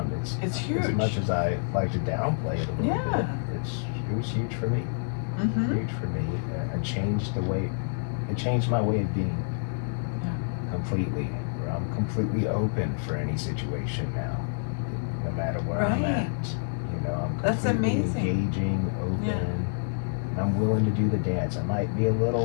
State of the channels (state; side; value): silent; right; digital silence